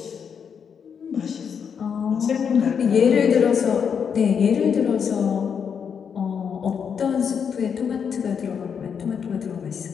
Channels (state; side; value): quieter; right; 7.0 dB